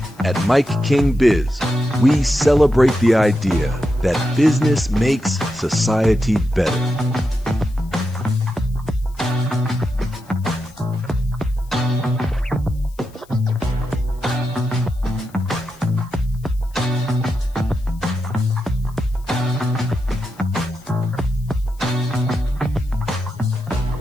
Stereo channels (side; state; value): left; noise; hiss, 28 dB below the sound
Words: At MIKEKINGBIZ, we celebrate the idea that business makes society better.